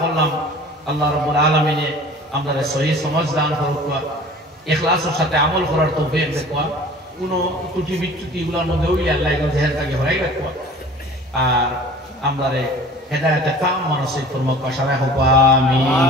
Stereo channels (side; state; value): both; normal; correlation 0.45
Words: করলাম আল্লাহ রাব্বুল আলামিনে আমাদের সহি সমাজ দান করুক ইখলাসের সাথে আমল করার তৌফিক দেখুয়া কোনো ত্রুটি বিচ্যুতি এগুলোর মধ্যে হইলে আল্লাহ এগুলো জেহেলটাকে হরাই রাখুয়া আর আমাদের হেদায়েতে কাম মানসিক ফরমাক পাশারা হোক আমিন